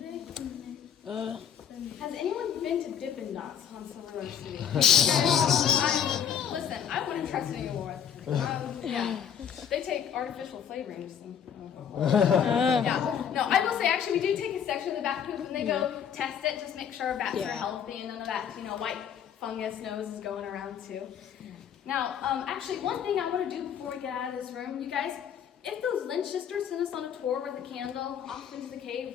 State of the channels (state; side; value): quieter; right; 8.3 dB